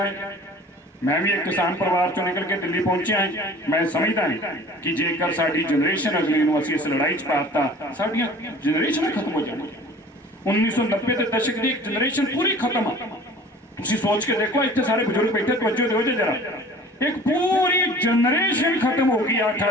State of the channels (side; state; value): both; normal; correlation 0.46